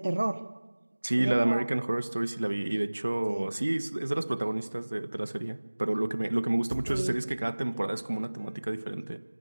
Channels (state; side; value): inverted; both; correlation -1.00